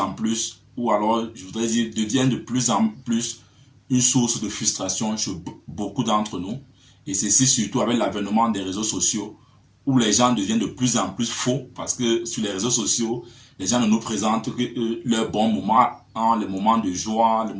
plus, ou alors je voudrais dire, devient de plus en plus une source de frustration chez beaucoup d'entre nous. Et ceci surtout avec l'avènement des réseaux sociaux, où les gens deviennent de plus en plus faux, parce que sur les réseaux sociaux, les gens ne nous présentent que leurs bons moments, hein, les moments de joie, les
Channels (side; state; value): both; identical; correlation 1.00